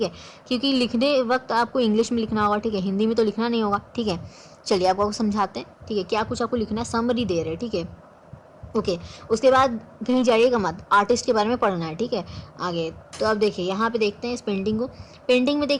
है, क्योंकि लिखने वक्त आपको इंग्लिश में लिखना होगा, ठीक है, हिंदी में तो लिखना नहीं होगा, ठीक है। चलिए आपको समझाते हैं, ठीक है, क्या कुछ आपको लिखना है, समरी दे रहे हैं, ठीक है, ओके। उसके बाद कहीं जाइएगा मत, आर्टिस्ट के बारे में पढ़ना है, ठीक है, आगे। तो अब देखिए यहाँ पे देखते हैं इस पेंटिंग को। पेंटिंग में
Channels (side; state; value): both; identical; correlation 1.00